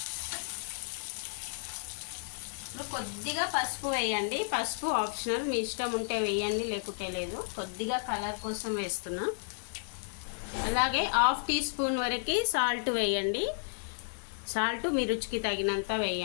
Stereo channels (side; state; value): right; silent; 56 dB below the other